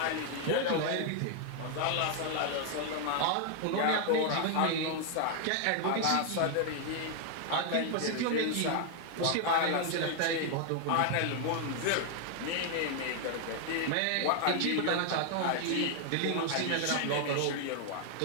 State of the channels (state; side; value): different; both; correlation 0.00